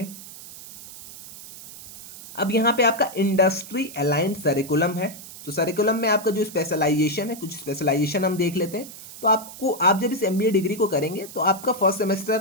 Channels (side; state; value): right; noise; hiss, 15 dB below the sound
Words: अब यहाँ पे आपका इंडस्ट्री अलाइंड करिकुलम है। तो सरिकुलम में आपका जो स्पेशलाइजेशन है, कुछ स्पेशलाइजेशन हम देख लेते हैं। तो आप जब इस MBA डिग्री को करेंगे तो आपका फर्स्ट